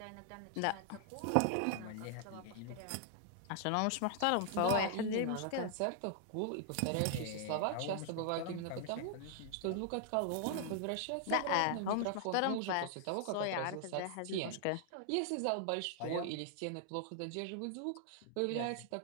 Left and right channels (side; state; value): both; different; correlation -0.01